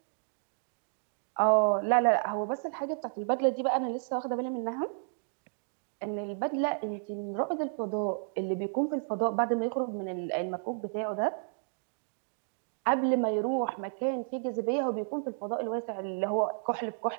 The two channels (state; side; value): silent; left; digital silence